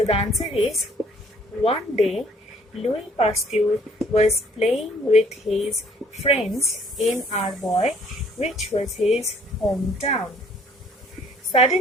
the answer is, one day Louis Pasteur was playing with his friends in Arbois, which was his hometown.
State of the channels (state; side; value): normal; both; correlation 0.60